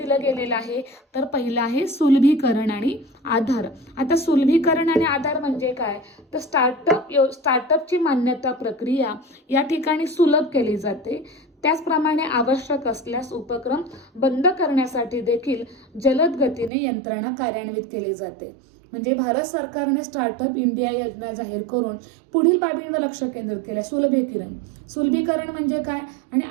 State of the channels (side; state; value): left; drops out; at 16.7 s